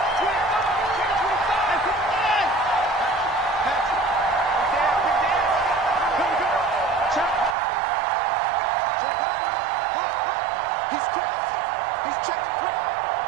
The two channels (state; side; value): drops out; left; at 7.6 s